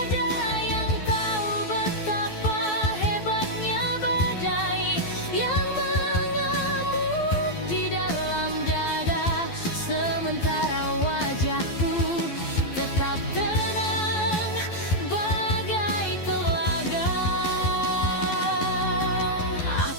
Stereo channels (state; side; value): late; right; 12 ms